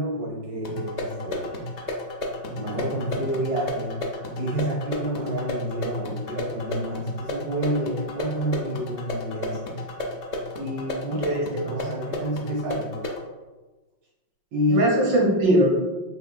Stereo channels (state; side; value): late; left; 5.5 ms